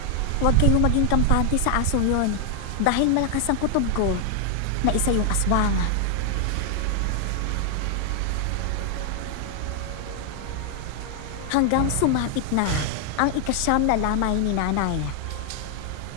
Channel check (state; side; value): different; both; correlation 0.00